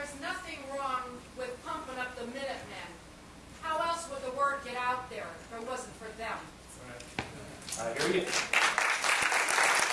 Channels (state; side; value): identical; both; correlation 1.00